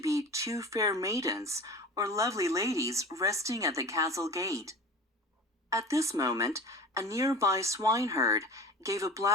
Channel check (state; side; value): normal; both; correlation 0.35